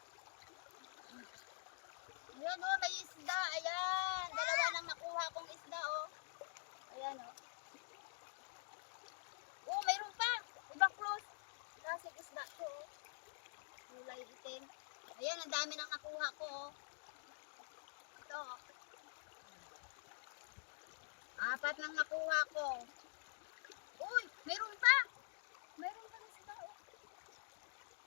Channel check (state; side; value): silent; right; digital silence